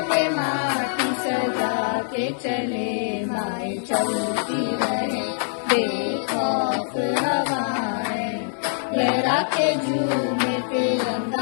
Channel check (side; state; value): right; silent; digital silence